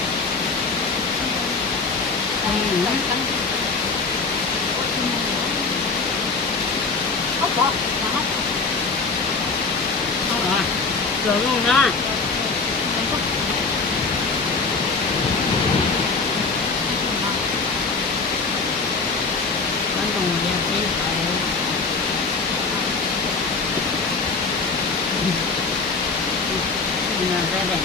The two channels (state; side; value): quieter; right; 4.2 dB